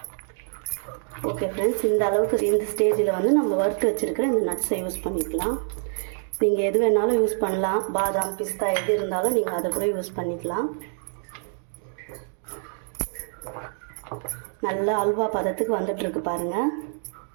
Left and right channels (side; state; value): left; silent; digital silence